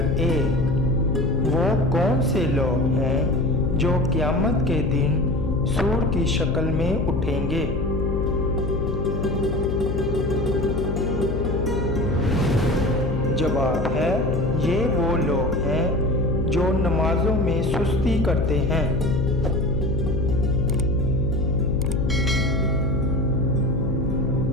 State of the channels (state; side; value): noise; left; hum, 2 dB below the sound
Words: 1، وہ کون سے لوگ ہیں جو قیامت کے دن سور کی شکل میں اٹھیں گے؟ جواب ہے یہ وہ لوگ ہیں جو نمازوں میں سستی کرتے ہیں۔